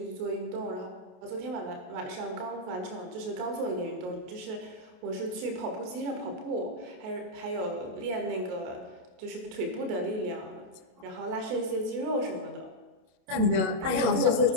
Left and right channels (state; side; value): late; left; 28 ms